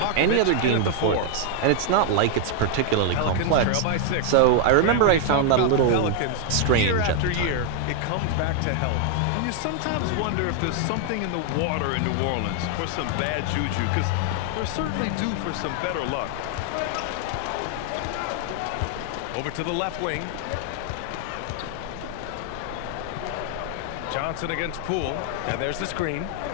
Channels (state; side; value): different; both; correlation 0.00